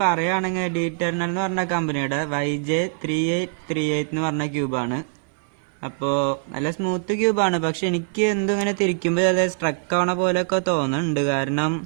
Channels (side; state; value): left; silent; digital silence